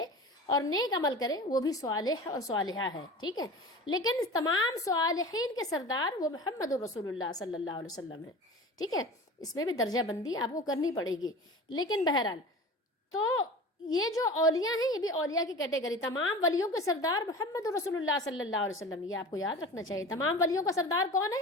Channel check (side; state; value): both; normal; correlation 0.36